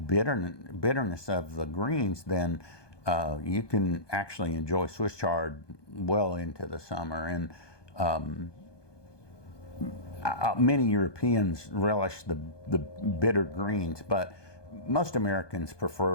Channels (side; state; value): right; late; 1.2 ms